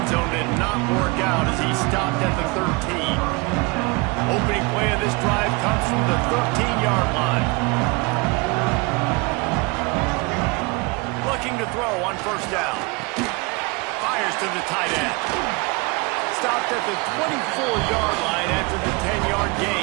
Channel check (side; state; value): left; quieter; 27.6 dB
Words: zone did not work out as he stopped at the 13. Opening play of this drive comes from the 13-yard line. Looking to throw on first down. Fires to the tight end. Stopped at the 24-yard line after the 10-yard